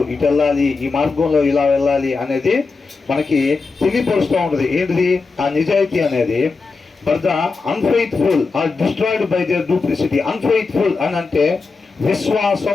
ఇటు వెళ్ళాలి, ఈ మార్గంలో ఇలా వెళ్ళాలి అనేది మనకి తెలియపరుస్తూ ఉంటుంది. ఏంటిది ఆ నిజాయితీ అనేది? But the unfaithful are destroyed by their duplicity. Unfaithful అని అంటే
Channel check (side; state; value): right; quieter; 4.3 dB